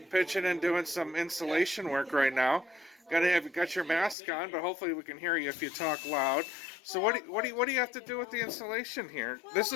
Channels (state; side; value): drops out; right; at 4.2 s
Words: pitching and doing some insulation work right now. Got your mask on, but hopefully we can hear you if you talk loud. So what do you have to do with the insulation here? This